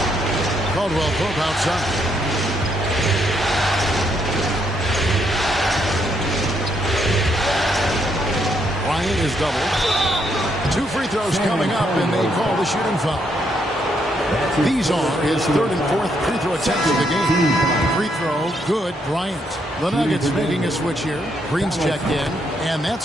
Caldwell Pope outside. Bryant is doubled. 2 free throws coming up, and they call the shooting foul. These are his 3rd and 4th free throw attempts of the game. Free throw, good, Bryant. The Nuggets making a switch here. Green's checked in, and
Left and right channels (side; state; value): both; normal; correlation 0.75